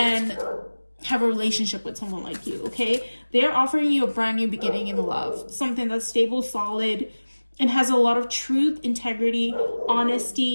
have a relationship with someone like you, okay? They're offering you a brand new beginning in love, something that's stable, solid, and has a lot of truth, integrity,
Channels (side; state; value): both; inverted; correlation -1.00